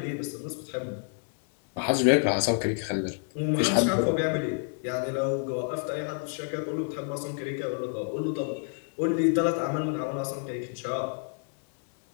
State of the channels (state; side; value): silent; right; 56 dB below the other